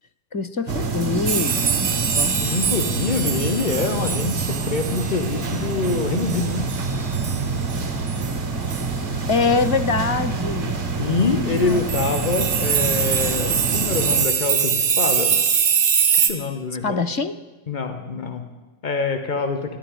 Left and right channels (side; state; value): right; late; 2.2 ms